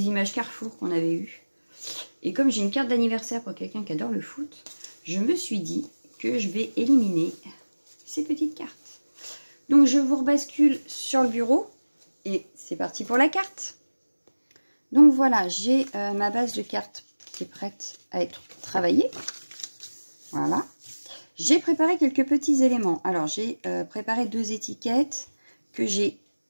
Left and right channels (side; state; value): both; inverted; correlation -1.00